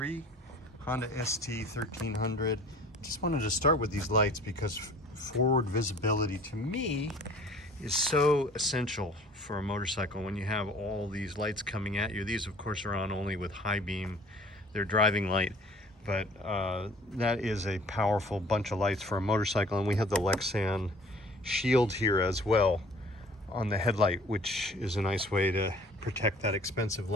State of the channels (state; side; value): normal; both; correlation 0.50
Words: Honda ST1300. Just wanted to start with these lights because forward visibility to me is so essential for a motorcycle when you have all these lights coming at you. These of course are on only with high beam. They're driving light, but that is a powerful bunch of lights for a motorcycle. And we have the Lexan shield here as well on the headlight, which is a nice way to protect that expensive